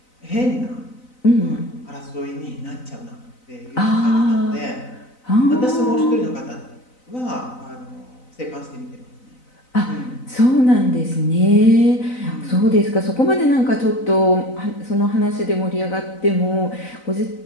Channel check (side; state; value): right; late; 4.0 ms